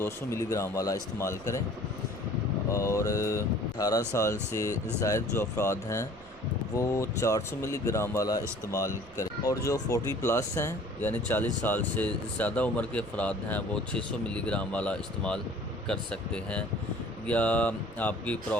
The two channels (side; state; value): left; noise; rumble, 26 dB below the sound